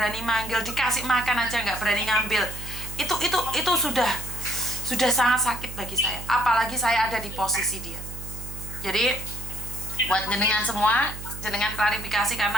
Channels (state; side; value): noise; right; hum, 11 dB below the sound